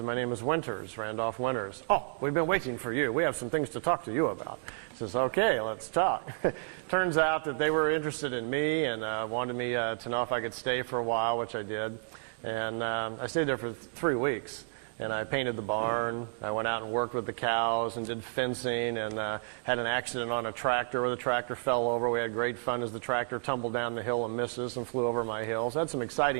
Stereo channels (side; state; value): left; silent; 56 dB below the other